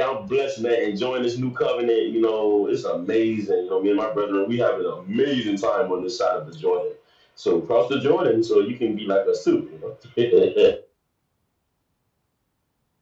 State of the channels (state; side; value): identical; both; correlation 1.00